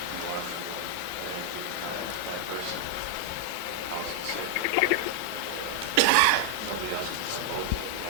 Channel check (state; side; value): different; both; correlation 0.00